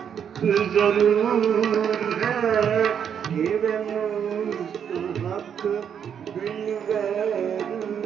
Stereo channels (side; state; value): left; quieter; 8.1 dB